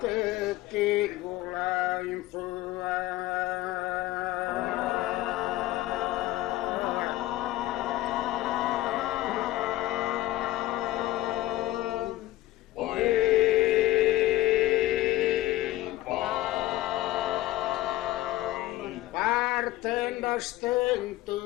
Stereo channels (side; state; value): right; quieter; 16.5 dB